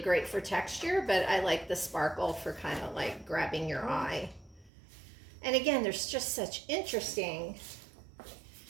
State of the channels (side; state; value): left; drops out; at 4.7 s